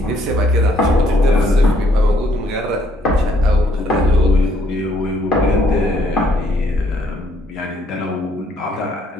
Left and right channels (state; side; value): normal; both; correlation 0.68